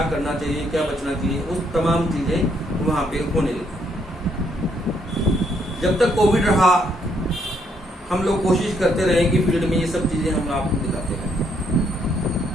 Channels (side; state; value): both; normal; correlation 0.72